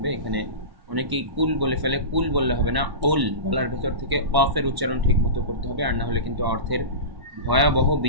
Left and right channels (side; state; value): left; late; 1.1 ms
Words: এখানে অনেকেই কুল বলে ফেলে। কুল বললে হবে না, উল বলার ভেতর থেকে কফের উচ্চারণ ঠিক মতো করতে হবে, আর না হলে কিন্তু অর্থের ভয়াবহ